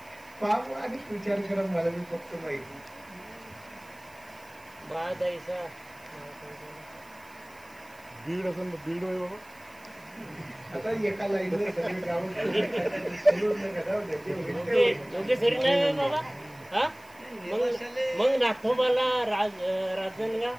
पाप आणि विचार करा. मला मी फक्त माहिती दीड असं दीड होय बाबा. आता एका लाईनला सगळे गावात मग नागोबाला राजनगाव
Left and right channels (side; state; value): right; noise; hiss, 26 dB below the sound